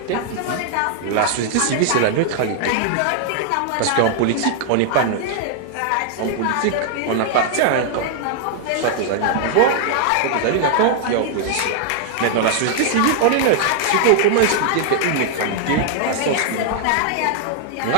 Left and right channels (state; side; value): different; both; correlation 0.00